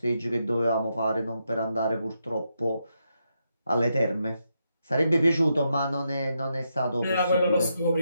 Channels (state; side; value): inverted; both; correlation -0.82